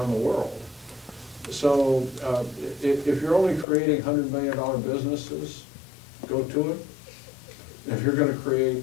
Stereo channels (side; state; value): right; drops out; at 3.7 s